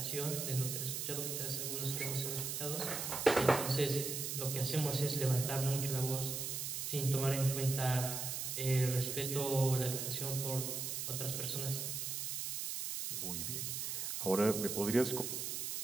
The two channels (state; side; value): noise; right; hiss, 3 dB below the sound